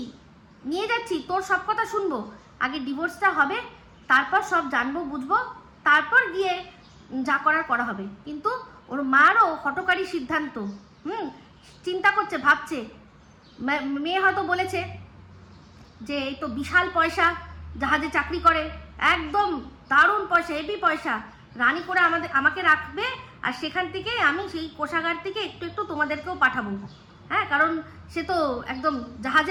নিয়ে যাচ্ছি, তোর সব কথা শুনবো, আগে ডিভোর্সটা হবে, তারপর সব জানবো বুঝবো, তারপর গিয়ে যা করা হবে। কিন্তু ওর মারও হঠকারী সিদ্ধান্ত, চিন্তা করছে, ভাবছে, মেয়ে হয়তো বলেছে যে এই তো বিশাল পয়সা, জাহাজে চাকরি করে, একদম দারুণ পয়সা, হেভি পয়সা, রানী করে আমাকে রাখবে, আর সেখান থেকে আমি সেই কোষাগার থেকে একটু একটু তোমাদেরকেও পাঠাবো। হ্যাঁ, কারণ সে তো একদম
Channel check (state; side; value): identical; both; correlation 1.00